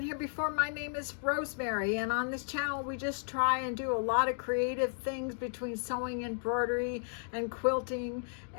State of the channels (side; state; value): right; silent; digital silence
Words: here before, my name is Rosemary, and on this channel we just try and do a lot of creative things between sewing, embroidery, and quilting.